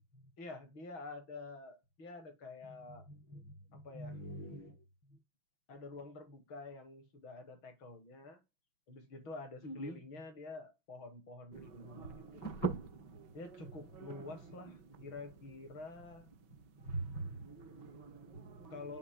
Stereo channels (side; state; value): right; late; 6.1 ms